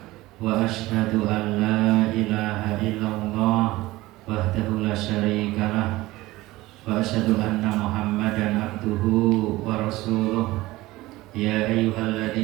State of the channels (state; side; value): quieter; left; 18.6 dB